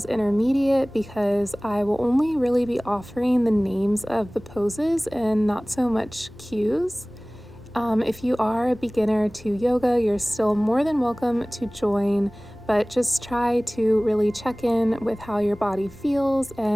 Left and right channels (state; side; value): noise; right; rumble, 26 dB below the sound